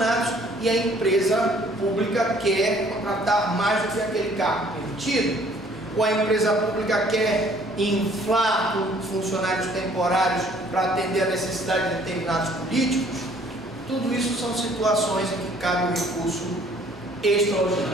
e a empresa pública quer contratar mais do que aquele cargo permitido, ou a empresa pública quer inflar com funcionários temporários para atender a necessidade de determinados políticos. Tudo isso são situações em que cabe um recurso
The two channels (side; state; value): both; normal; correlation 0.59